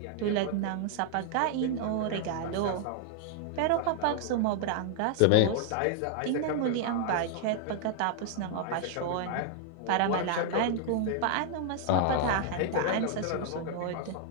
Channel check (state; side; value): different; both; correlation 0.00